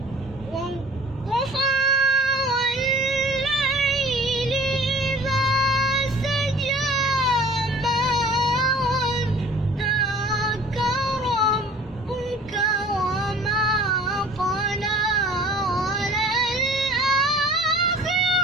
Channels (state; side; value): normal; both; correlation 0.48